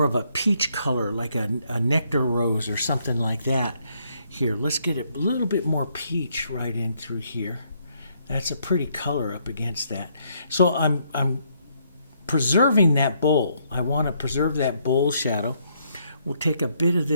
of a peach color, like a nectar rose or something like that. Here, let's get a little bit more peach right in through here. That's a pretty color up against that. So I'm preserving that bowl. I want to preserve that bowl shadow. We'll take a bit of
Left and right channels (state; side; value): inverted; both; correlation -0.72